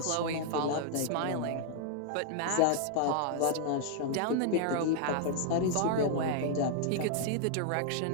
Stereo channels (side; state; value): both; different; correlation 0.00